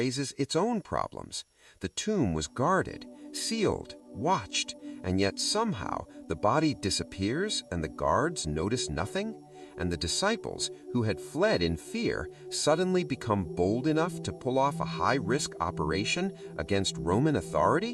its own problems. The tomb was guarded, sealed, watched, and yet somehow the body disappears and the guards notice nothing? And the disciples, who had fled in fear, suddenly become bold enough to pull off a high-risk operation against Roman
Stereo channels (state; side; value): identical; both; correlation 1.00